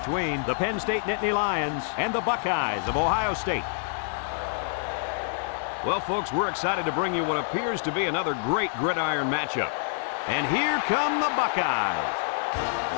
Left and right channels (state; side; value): silent; right; digital silence